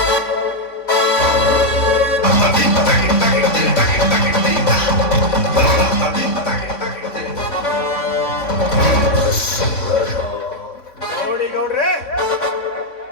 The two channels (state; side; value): late; right; 3.6 ms